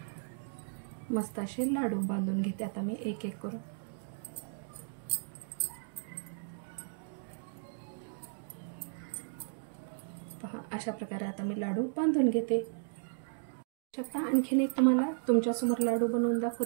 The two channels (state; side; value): silent; left; digital silence